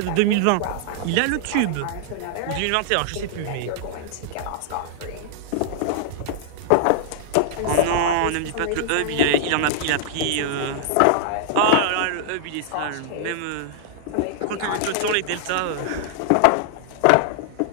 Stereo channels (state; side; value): different; both; correlation -0.01